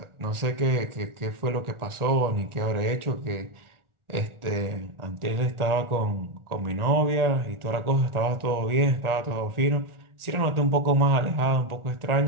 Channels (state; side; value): late; left; 1.4 ms